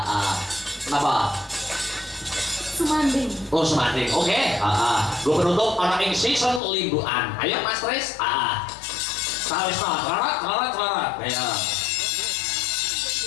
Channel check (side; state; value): right; drops out; at 6.6 s